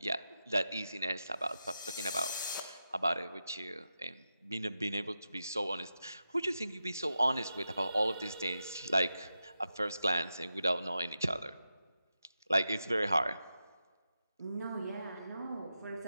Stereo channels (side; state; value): both; inverted; correlation -0.89